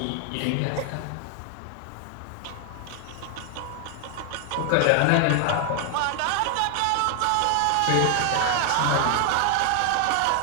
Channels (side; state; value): both; different; correlation 0.00